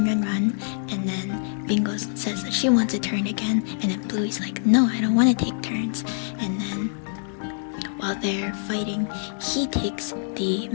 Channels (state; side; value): silent; right; digital silence